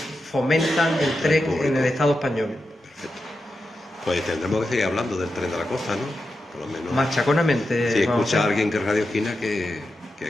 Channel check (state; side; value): normal; both; correlation 0.89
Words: el tren en el Estado español. Perfecto. Pues tendremos que seguir hablando del tren de la costa, ¿no? Por lo menos. Machaconamente. Si vamos escucha a a hacer. alguien que es Radio Esquina, que